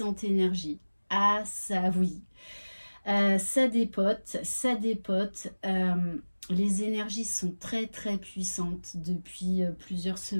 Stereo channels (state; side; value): inverted; both; correlation -1.00